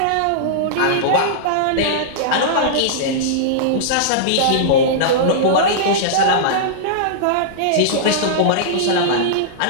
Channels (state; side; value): different; both; correlation -0.03